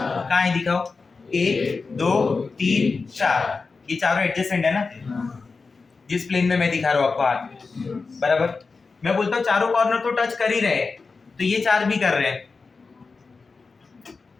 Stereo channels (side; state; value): right; quieter; 4.4 dB